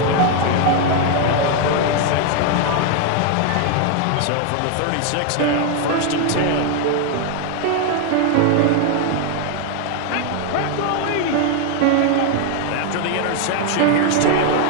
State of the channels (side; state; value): both; different; correlation 0.01